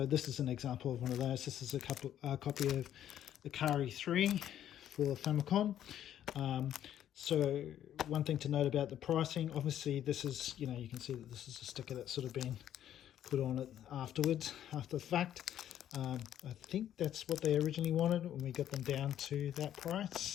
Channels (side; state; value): right; quieter; 10.9 dB